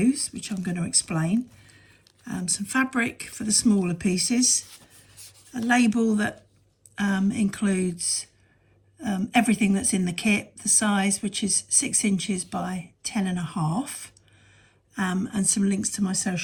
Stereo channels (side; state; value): both; identical; correlation 1.00